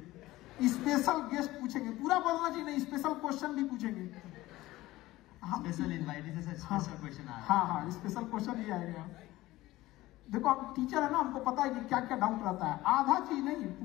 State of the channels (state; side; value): quieter; right; 17.5 dB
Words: स्पेशल गेस्ट पूछेंगे, पूरा बोलना चाहिए नहीं, स्पेशल क्वेश्चन भी पूछेंगे। स्पेशल इनवाइटेड से स्पेशल क्वेश्चन आ रहा है। हाँ, स्पेशल क्वेश्चन ही आएगा। देखो आप टीचर है ना, हमको पता है कि क्या क्या डाउट रहता है, आधा चीज नहीं